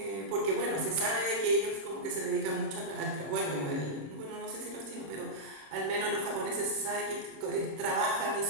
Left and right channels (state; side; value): late; left; 26 ms